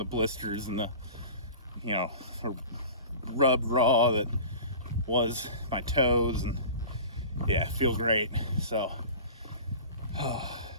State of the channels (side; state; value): both; inverted; correlation -0.38